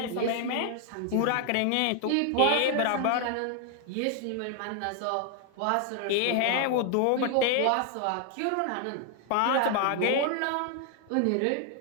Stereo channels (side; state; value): both; different; correlation 0.00